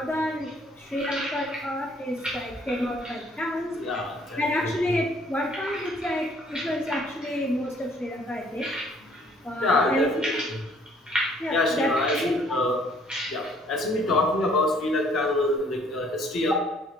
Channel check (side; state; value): both; normal; correlation 0.61